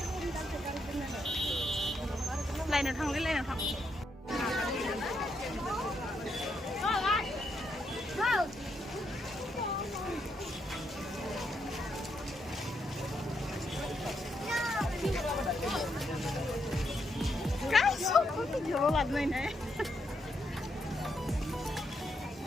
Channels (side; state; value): both; normal; correlation 0.79